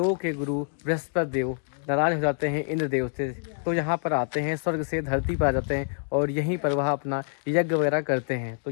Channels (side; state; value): right; silent; digital silence